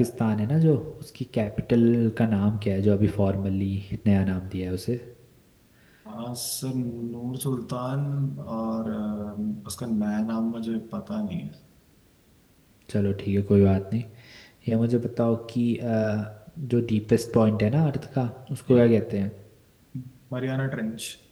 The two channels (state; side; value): identical; both; correlation 1.00